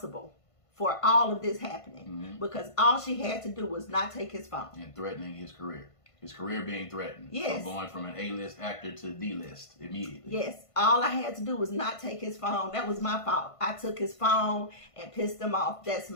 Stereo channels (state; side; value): late; right; 1.5 ms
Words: for all of this happening because all she had to do was not take his phone. And threatening his career. His career being threatened. Yes. From going from an A-list actor to D-list immediately. Yes. All I had to do was not take his phone. That was my fault. I took his phone and pissed him off. That's